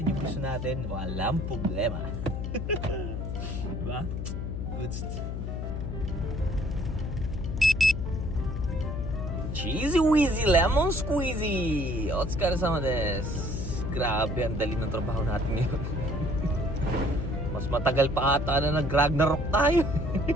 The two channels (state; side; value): noise; left; hum, 4 dB below the sound